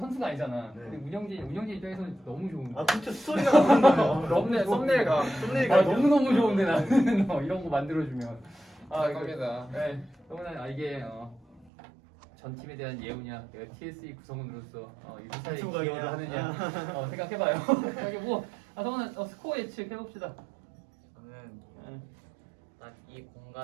아니잖아. 네. 근데 운영진 입장에서는 너무 좋은. 진짜 스토리가 나오는 거예요. 썸네일가 너무 좋은데 나는 이런 거 만들어주면. 겁니다. 네. 그러면 이게 전 팀에 대한 예우냐, 내가 TSE 구성원으로서 이 회사에 구성원이냐. 기여를 하느냐 생각해봐요. 여기 성훈은 스코어 예측 해봅시다. 저는 네. 딱 이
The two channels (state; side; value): drops out; left; at 11.7 s